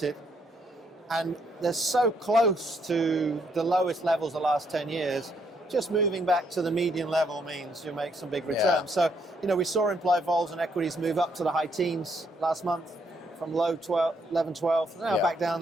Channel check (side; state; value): both; normal; correlation 0.72